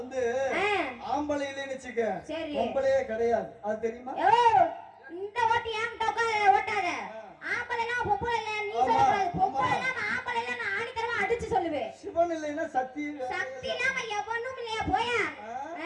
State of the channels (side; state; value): both; identical; correlation 1.00